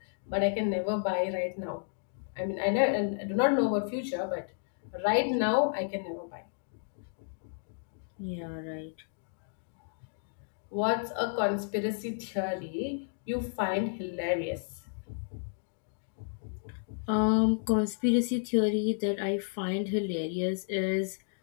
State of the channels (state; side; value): silent; right; digital silence